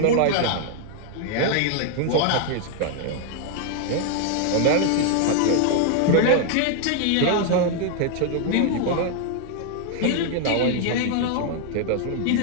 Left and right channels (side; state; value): both; different; correlation 0.00